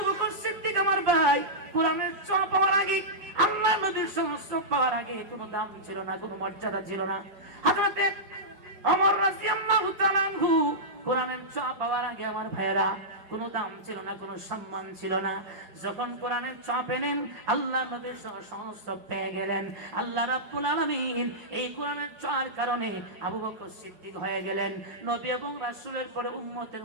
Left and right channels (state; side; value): late; left; 4.9 ms